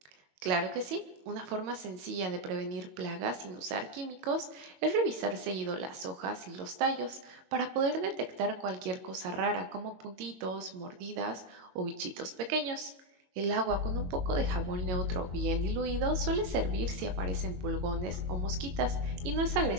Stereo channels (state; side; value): late; left; 22 ms